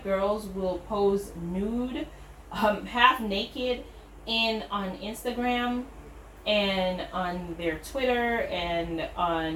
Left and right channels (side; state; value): both; identical; correlation 1.00